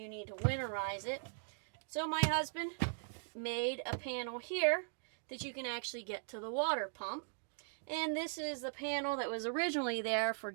need to winterize it. So my husband made a panel here that you can actually get to the water pump. And this is the panel that was originally there for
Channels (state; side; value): silent; left; digital silence